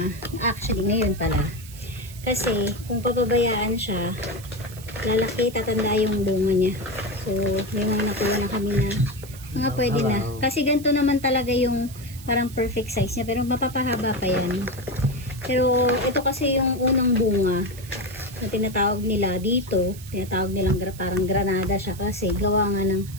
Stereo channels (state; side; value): noise; right; hiss, 18 dB below the sound